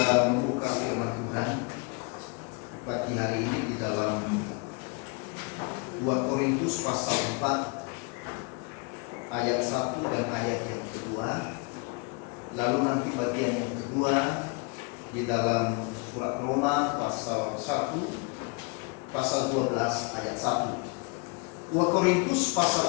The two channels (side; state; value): right; quieter; 30.7 dB